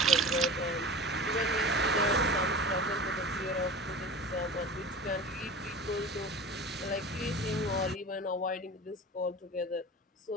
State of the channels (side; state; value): both; normal; correlation 0.35